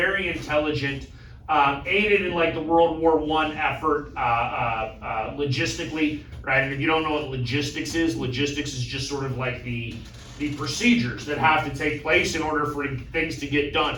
intelligent, aided in like the World War I effort logistically, right? And if you don't know what logistics is just sort of like the procedures that have to take place in order for things to get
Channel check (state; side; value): identical; both; correlation 1.00